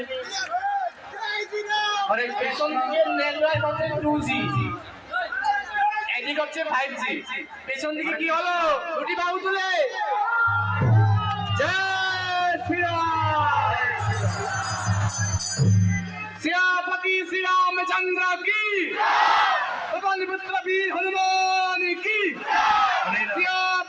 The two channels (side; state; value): both; identical; correlation 1.00